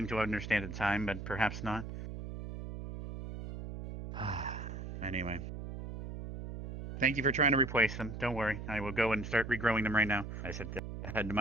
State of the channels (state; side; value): noise; right; hum, 8 dB below the sound